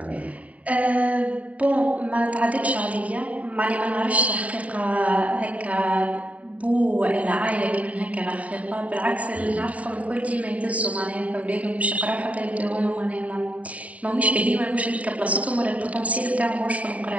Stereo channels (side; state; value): left; late; 0.068 ms